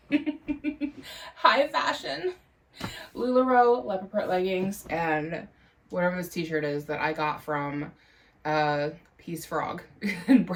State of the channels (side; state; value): both; identical; correlation 1.00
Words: High fashion. LuLaRoe leopard print leggings and whatever this t-shirt is that I got from Peace Frog in